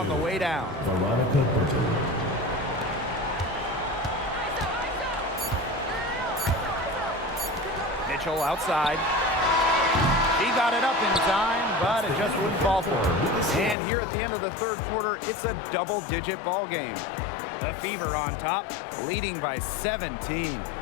the way down. Veronica Burton. Mitchell outside. He got it up in time, but it just wouldn't fall for her. And here at the end of the third quarter, it's a double-digit ball game. The Fever on top, leading by 17.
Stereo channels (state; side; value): drops out; right; at 13.8 s